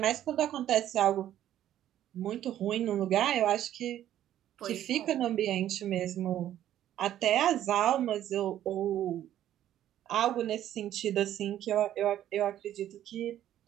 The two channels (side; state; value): left; quieter; 11.9 dB